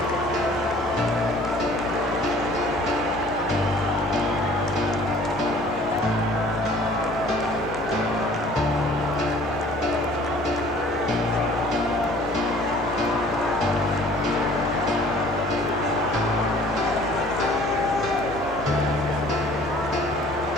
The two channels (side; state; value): both; normal; correlation 0.52